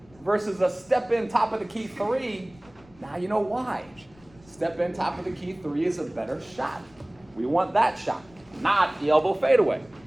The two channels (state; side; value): noise; left; rumble, 27 dB below the sound